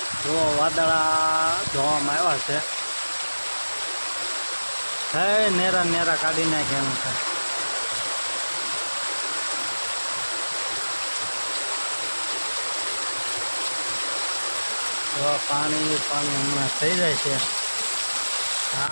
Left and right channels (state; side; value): inverted; both; correlation -1.00